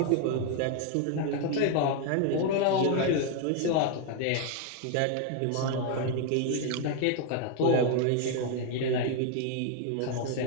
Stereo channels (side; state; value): both; different; correlation 0.00